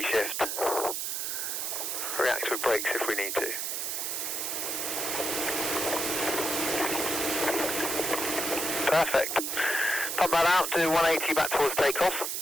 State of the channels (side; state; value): right; noise; hiss, 2 dB below the sound